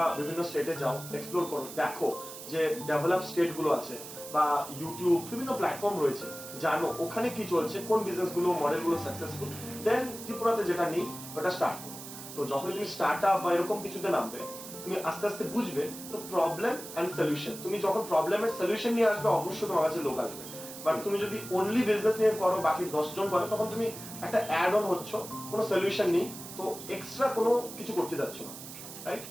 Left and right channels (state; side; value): noise; right; hiss, 12 dB below the sound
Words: বিভিন্ন স্টেটে যাও, এক্সপ্লোর করো, দেখো যে ডেভেলপ স্টেট গুলো আছে বা ইউটিউব বিভিন্ন প্ল্যাটফর্ম রয়েছে, জানো ওখানে কি চলছে, কোন বিজনেস গুলো মডেল গুলো সাকসেসফুল, দেন ত্রিপুরাতে যেটা নেই ওটা স্টার্ট করো। তো যখন তুমি স্টার্টআপ বা এরকম কিছুতে নামবে, তুমি আস্তে আস্তে বুঝবে তো প্রবলেম এন্ড সলিউশন, তুমি যখন প্রবলেমের সলিউশন নিয়ে আসবে অবশ্যই তোমার কাছে লোক আসবে। বাট তুমি যদি অনলি বিজনেস নিয়ে করো, বাকি 10 জন করে, তখন তুমি একটা অ্যাড অন হচ্ছ, কোনো সলিউশন নেই, তো এক্সট্রা কোনো কিছু করতে যাচ্ছ না, রাইট?